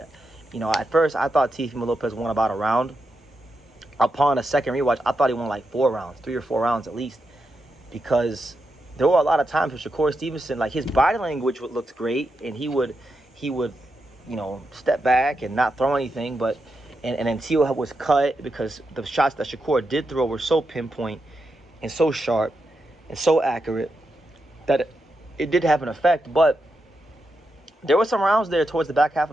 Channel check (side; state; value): both; normal; correlation 0.86